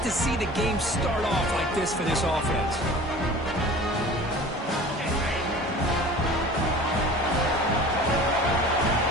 to see the game start off like this for this offense.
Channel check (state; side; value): normal; both; correlation 0.41